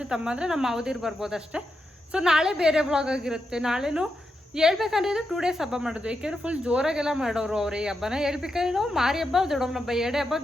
ತಮ್ಮ ಅಂದರೆ ನಮ್ಮ ಮಾವದಿರು ಬರ್ಬೋದು ಅಷ್ಟೇ. ಸೊ ನಾಳೆ ಬೇರೆ ವ್ಲಾಗ್ ಆಗಿರುತ್ತೆ. ನಾಳೆನೂ ಹೇಳ್ಬೇಕಂದ್ರೆ 2 days ಹಬ್ಬ ಮಾಡೋದು, ಏಕೆಂದರೆ ಫುಲ್ ಜೋರಾಗೆಲ್ಲ ಮಾಡೋರು ಅವ್ರು ಈ ಹಬ್ಬನ. ಹೇಳ್ಬೇಕಾದ್ರೆ ನಾವು ಮಾರಿ ಹಬ್ಬ, ದೊಡ್ಡಮ್ಮನ ಹಬ್ಬ 2 ಹಬ್ಬ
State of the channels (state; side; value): normal; both; correlation 0.86